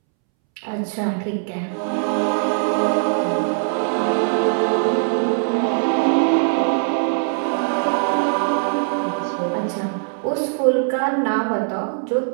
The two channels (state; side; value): silent; left; 65 dB below the other